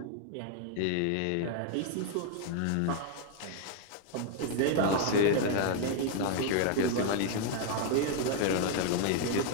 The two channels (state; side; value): different; both; correlation 0.00